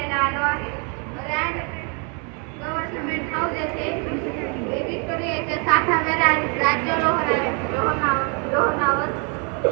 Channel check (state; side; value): quieter; left; 36.9 dB